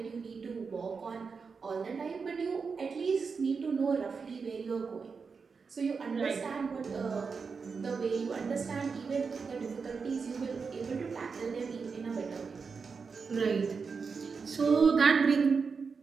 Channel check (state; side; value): quieter; left; 5.2 dB